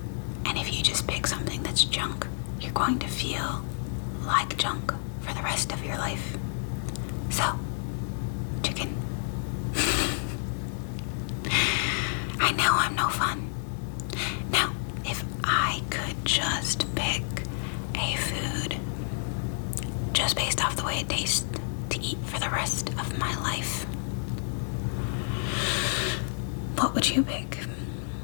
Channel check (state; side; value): silent; right; digital silence